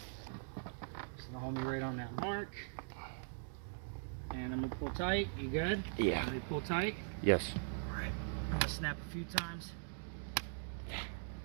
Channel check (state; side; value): silent; left; digital silence